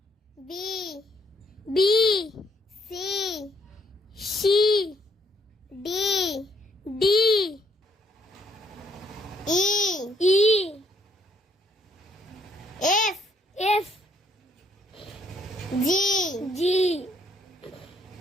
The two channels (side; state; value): both; normal; correlation 0.69